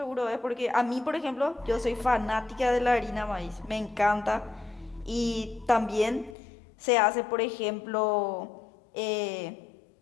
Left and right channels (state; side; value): drops out; right; at 6.4 s